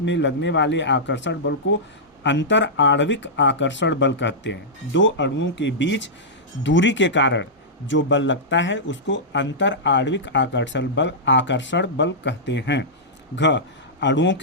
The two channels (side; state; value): both; normal; correlation -0.13